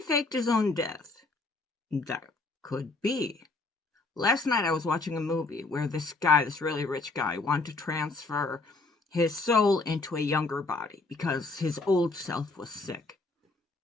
faked his own death? That could be. Last night I was watching a movie where this guy, this really rich guy, wanted to transfer his soul into a younger body because his old self was sick.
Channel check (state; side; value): quieter; right; 3.5 dB